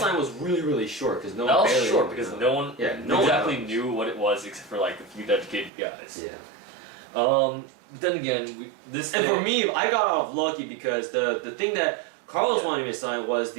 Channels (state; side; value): drops out; left; at 5.7 s